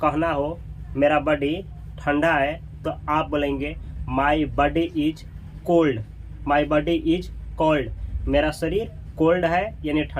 हो मेरा बॉडी ठंडा है, तो आप बोलेंगे my body is cold. My body is cold, मेरा शरीर कोल्ड है यानी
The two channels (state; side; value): identical; both; correlation 1.00